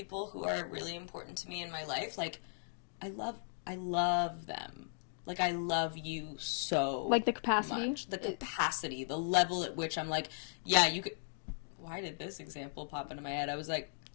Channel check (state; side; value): silent; right; digital silence